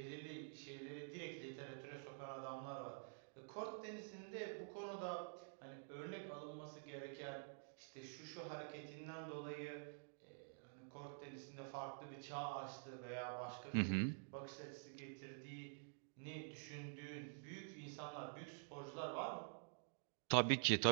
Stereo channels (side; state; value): left; silent; digital silence